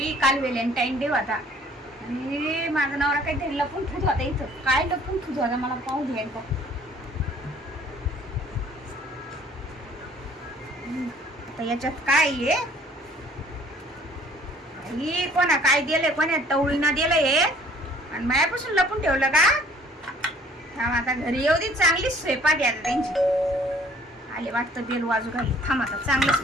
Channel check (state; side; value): normal; both; correlation 0.56